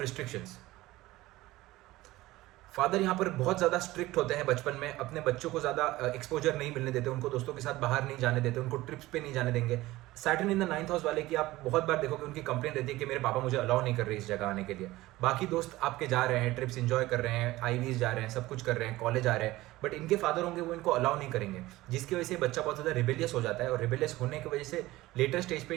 restrictions. Father यहाँ पर बहुत ज़्यादा स्ट्रिक्ट होते हैं बचपन में, अपने बच्चों को ज़्यादा एक्सपोजर नहीं मिलने देते, उनको दोस्तों के साथ बाहर नहीं जाने देते, उनको ट्रिप्स पे नहीं जाने देंगे। Saturn in the 9th house वाले की आप बहुत बार देखोगे उनकी कंप्लेंट रहती है कि मेरे पापा मुझे अलाउ नहीं कर रहे इस जगह आने के लिए। बाकी दोस्त आपके जा रहे हैं, ट्रिप्स इंजॉय कर रहे हैं, आईवीज जा रहे हैं, सब कुछ कर रहे हैं, कॉलेज आ रहे हैं, बट इनके फादर होंगे वो इनको अलाउ नहीं करेंगे, जिसकी वजह से बच्चा बहुत ज़्यादा रिबेलियस हो जाता है। और रिबेलियस होने की वजह से लेटर स्टेज पे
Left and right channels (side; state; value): left; quieter; 17.9 dB